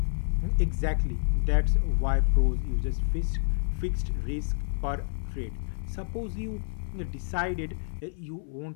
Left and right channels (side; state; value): right; silent; 59 dB below the other